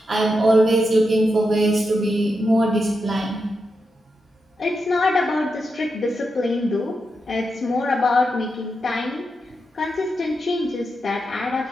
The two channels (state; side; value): normal; both; correlation 0.86